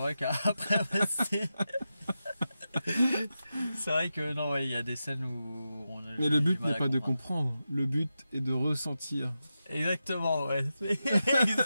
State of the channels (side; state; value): both; inverted; correlation -0.90